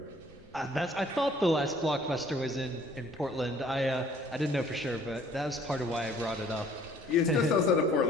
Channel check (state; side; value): normal; both; correlation 0.57